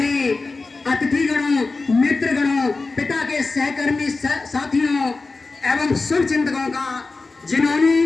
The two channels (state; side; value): quieter; right; 3.8 dB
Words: अतिथिगणों, मित्रगणों, पिता के सहकर्मी साथियों एवं शुभ चिंतकों का,